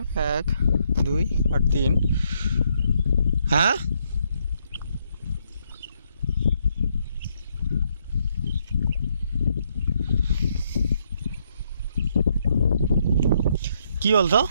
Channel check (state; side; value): inverted; both; correlation -0.74